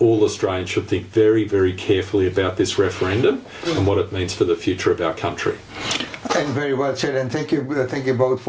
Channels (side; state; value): both; identical; correlation 1.00